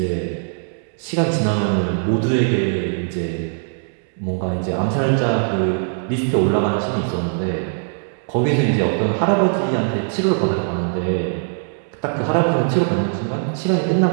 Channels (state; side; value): silent; left; 65 dB below the other